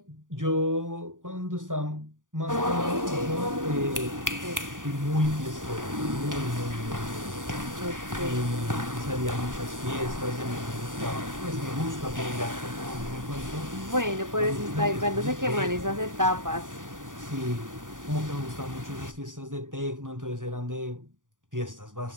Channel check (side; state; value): left; late; 0.88 ms